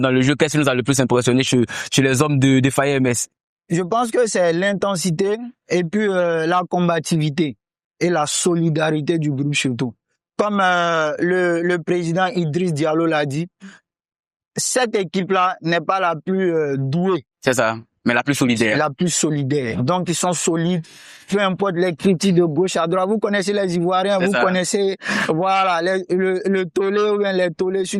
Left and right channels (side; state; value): both; identical; correlation 1.00